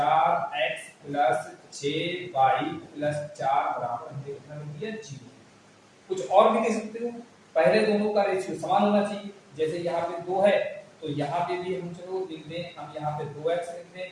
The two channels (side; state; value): both; identical; correlation 1.00